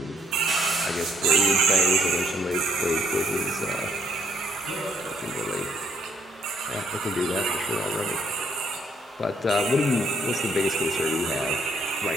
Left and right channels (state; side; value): normal; both; correlation 0.68